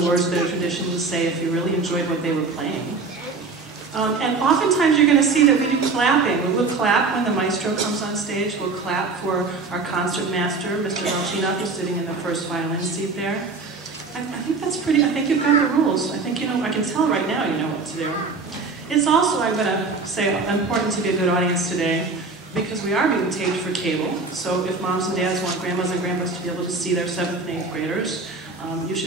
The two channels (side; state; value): left; quieter; 4.1 dB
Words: words that are traditionally say if you really enjoyed what they were playing. And oftentimes you're going to see that we do clapping. We'll clap when the maestro comes on stage. We'll clap for our concert master, Mr. Velchinov, who's sitting in the first violin seat there. I think that's pretty, I think you've got the rules. I think you know, I can tell right now you know what to do. It's also, I'm going to say, important to be a good audience today because we are being taped for cable. So if moms and dads want grandmas and grandpas to be able to see their 7th and 8th graders, you